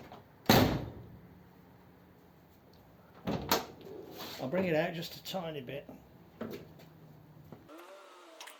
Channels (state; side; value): identical; both; correlation 1.00